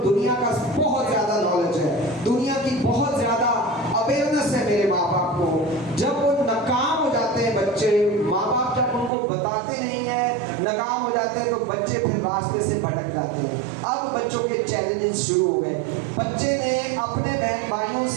दुनिया का बहुत ज्यादा नॉलेज है, दुनिया की बहुत ज्यादा अवेयरनेस है मेरे माँ बाप को, जब वो नाकाम हो जाते हैं बच्चे, माँ बाप जब उनको बताते नहीं है, नाकाम हो जाते हैं, तो बच्चे फिर रास्ते से भटक जाते हैं। अब बच्चों के चैलेंजेस शुरू हो गए। बच्चे ने अपने बहन भाइयों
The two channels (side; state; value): left; drops out; at 9.1 s